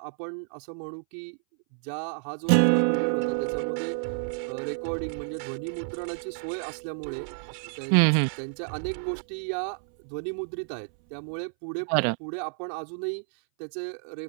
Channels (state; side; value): silent; left; 58 dB below the other